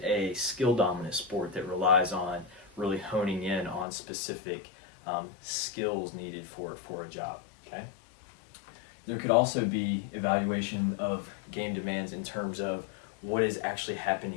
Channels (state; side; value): drops out; right; at 3.9 s